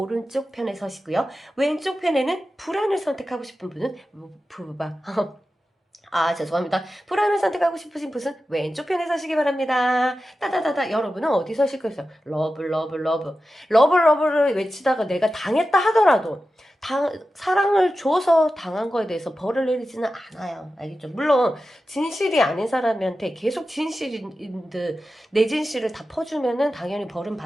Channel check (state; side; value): normal; both; correlation 0.93